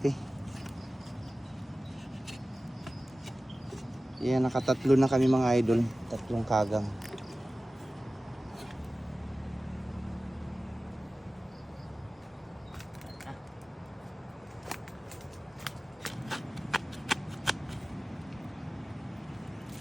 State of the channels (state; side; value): normal; both; correlation 0.96